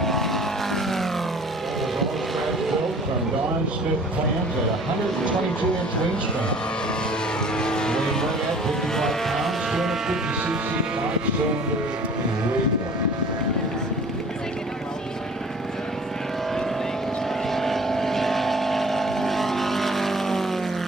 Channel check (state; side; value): normal; both; correlation 0.49